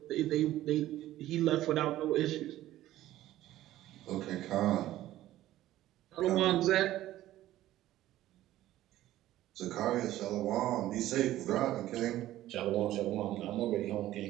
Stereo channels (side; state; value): left; quieter; 14.4 dB